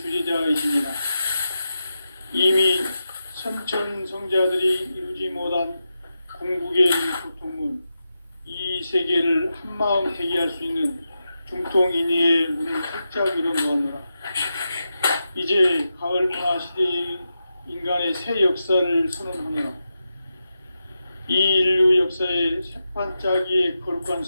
이미 선천 성자들이 이루지 못한 궁극의 고통문, 이 세계를 한마음 되게 할 수 있는 중통인의의 문을 활짝 열어놓았노라. 이제 가을 문화 시대의 인간의 새 역사를 선언하노라. 이 인류 역사의 새판짜기의 거룩한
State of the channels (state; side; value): inverted; both; correlation -0.89